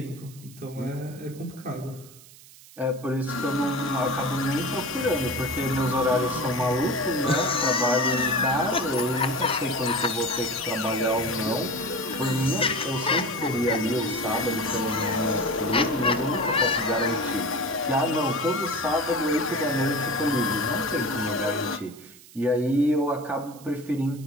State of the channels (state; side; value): noise; right; hiss, 21 dB below the sound